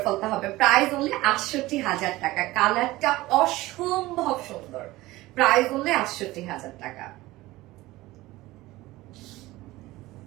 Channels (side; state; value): left; quieter; 18.6 dB